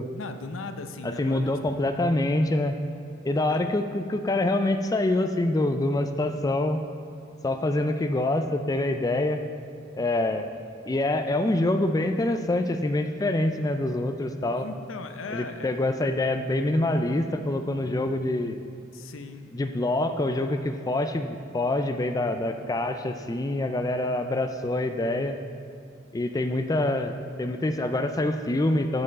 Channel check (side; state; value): both; normal; correlation 0.71